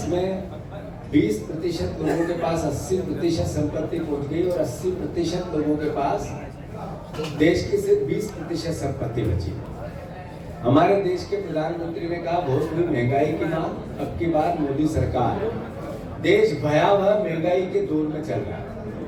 20% लोगों के पास 80% संपत्ति पहुंच गई और 80% लोगों के पास देश की सिर्फ 20% संपत्ति बची। हमारे देश के प्रधानमंत्री ने कहा बहुत बड़ी महंगाई की मांग, अब की बार मोदी सरकार। देश भयावह महंगाई के दौर में चल रहा है।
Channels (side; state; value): both; identical; correlation 1.00